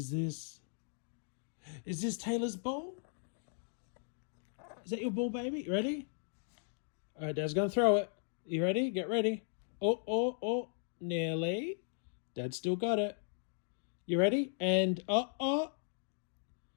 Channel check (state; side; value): silent; right; digital silence